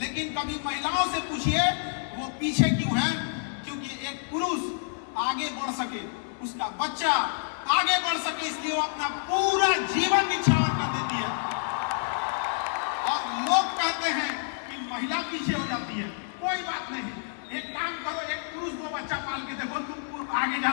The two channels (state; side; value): silent; right; 59 dB below the other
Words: कभी महिलाओं से पूछिए वो पीछे क्यों है। क्योंकि एक पुरुष आगे बढ़ सके, उसका बच्चा आगे बढ़ सके, इसलिए वो अपना पूरा जीवन निछावर कर देती है। और लोग कहते हैं कि महिला पीछे हो जाती है। कोई बात नहीं, एक काम करो, एक पुरुष वो बच्चा पाल के देखो, तुम आगे